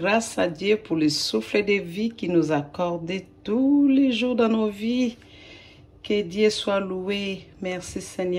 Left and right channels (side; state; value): both; identical; correlation 1.00